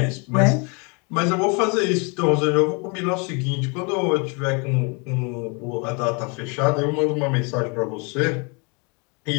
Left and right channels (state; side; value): quieter; right; 32.6 dB